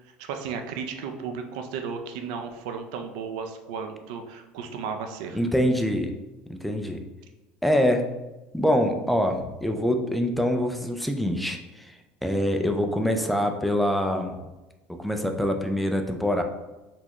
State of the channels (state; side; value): normal; both; correlation 0.73